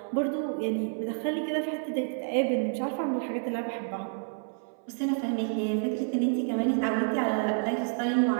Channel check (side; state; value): left; silent; 58 dB below the other